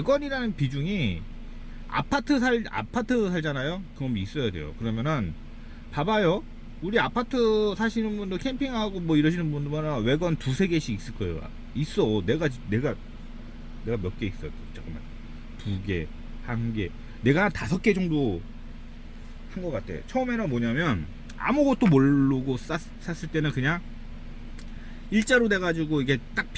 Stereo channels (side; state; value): both; identical; correlation 1.00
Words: 비중이 아파트 살잖아요. 그럼 있어야 돼요. 그러면은 봐봐요. 우리 아파트 사시는 분들, 캠핑하고 뭐 이러시는 분들은 외관 두세 개씩 있을 거예요. 있어. 내가 몇 개 있어. 잠깐만. 2개, 1개. 내가 한 5개 정도 한 것 같아. 처음에는 뭐냐면 아무것도 모르고 샀을 때는 그냥 일자로 돼가지고 이게 딱